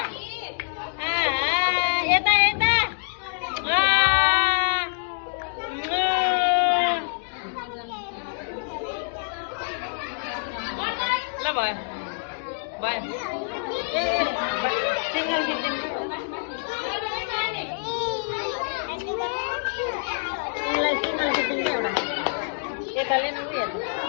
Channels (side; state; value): right; silent; digital silence